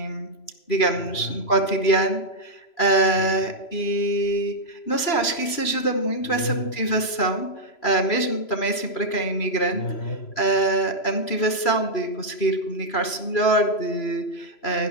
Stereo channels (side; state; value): right; late; 3.0 ms